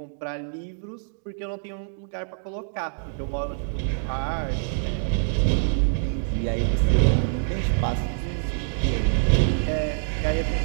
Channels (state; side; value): silent; left; digital silence